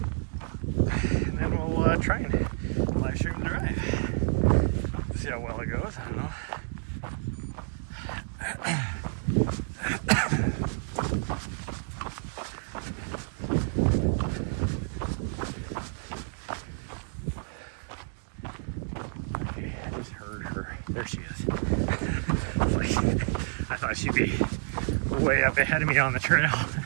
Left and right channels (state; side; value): silent; left; 58 dB below the other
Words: And then we'll try and live stream the drive. See how well it goes. I don't know. There she is. I thought she'd be way up ahead of me on the trail.